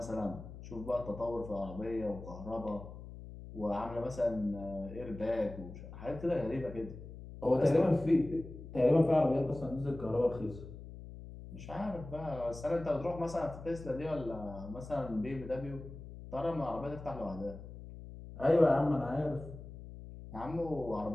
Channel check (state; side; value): noise; left; hum, 13 dB below the sound